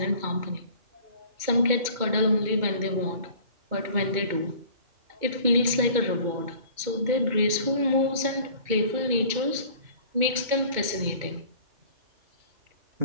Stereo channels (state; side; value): late; left; 2.2 ms